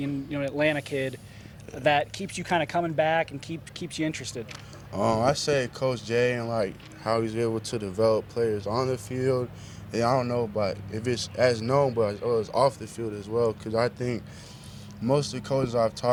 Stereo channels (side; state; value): both; identical; correlation 1.00